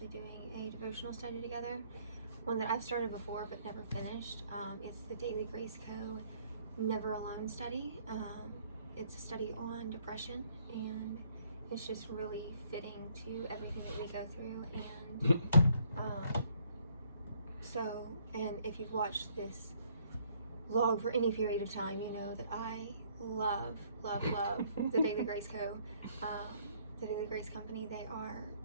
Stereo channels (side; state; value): both; inverted; correlation -0.65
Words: doing a devotional study together. One that I've started before but never finished. It's the Daily Grace Co. Never Alone study. It's a study on depression, and it's just really fitting to everything that we go through. And and if you've watched this vlog for any period of time, you know that I love the Daily Grace Co. The Daily Grace Company. They are